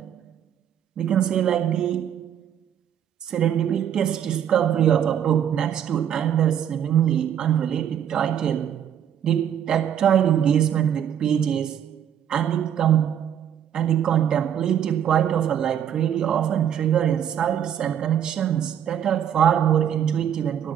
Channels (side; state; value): left; quieter; 9.4 dB